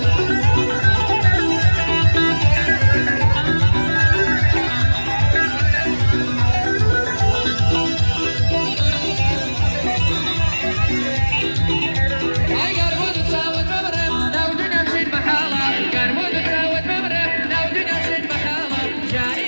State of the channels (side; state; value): both; inverted; correlation -1.00